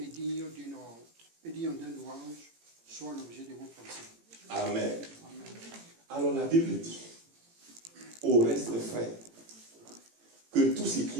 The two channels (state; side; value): late; left; 18 ms